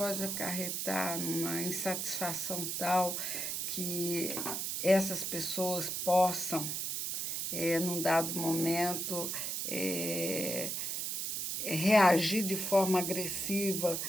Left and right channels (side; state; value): right; noise; hiss, 2 dB below the sound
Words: acarretar numa insatisfação tal que essas pessoas possam, num dado momento, reagir de forma agressiva,